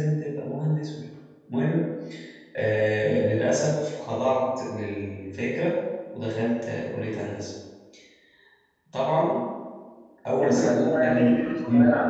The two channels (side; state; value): both; identical; correlation 1.00